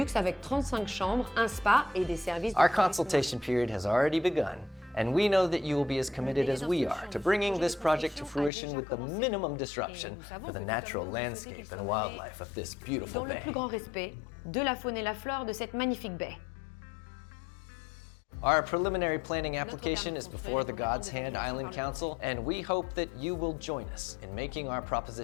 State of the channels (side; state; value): right; drops out; at 8.5 s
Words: avec 35 chambres, un spa et des services de Our tourisme. consultation period has already begun, and we know that you will be as committed as we are to bringing this project to fruition with the minimum disruption for the natural landscape and wildlife of this beautiful Dans le bay. plus grand respect de la faune et la flore de cette magnifique baie. Our preliminary planning application is before the God's Hand Island Council, and we hope that you will join us in making our